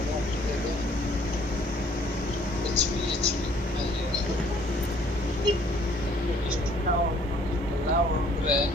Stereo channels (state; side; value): normal; both; correlation 0.60